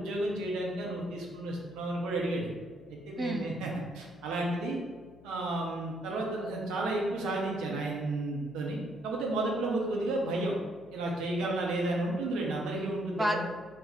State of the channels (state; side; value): noise; left; hum, 22 dB below the sound